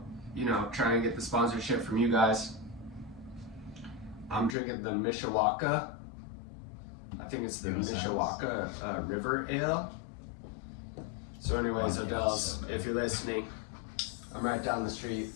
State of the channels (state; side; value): drops out; right; at 4.5 s